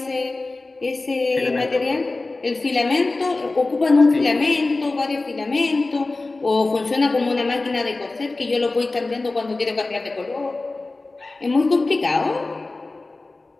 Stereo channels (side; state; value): right; quieter; 3.3 dB